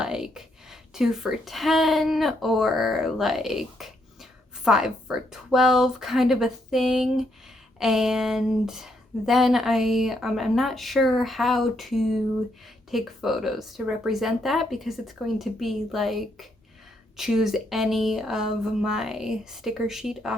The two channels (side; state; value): both; normal; correlation 0.76